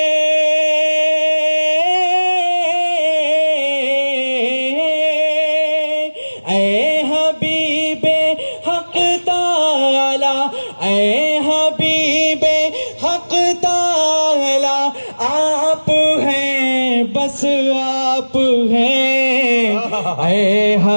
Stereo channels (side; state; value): both; inverted; correlation -1.00